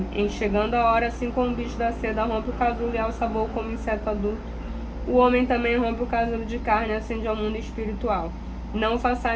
Em chegando a hora, assim como o bicho da seda rompe o casulo e alça voo como inseto adulto, o homem também rompe o casulo de carne e ascende ao mundo espiritual. Não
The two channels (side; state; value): both; identical; correlation 1.00